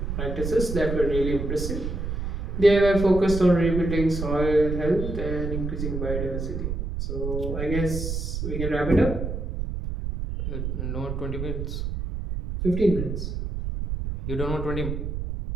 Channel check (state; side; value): noise; right; rumble, 3 dB below the sound